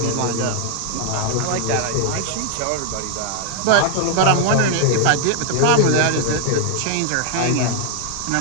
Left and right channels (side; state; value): both; different; correlation 0.00